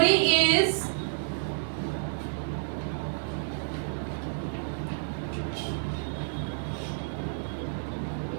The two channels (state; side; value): silent; left; digital silence